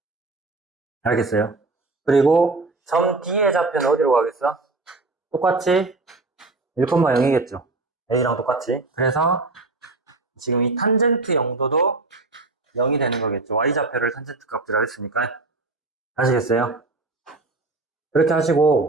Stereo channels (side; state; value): left; quieter; 3.4 dB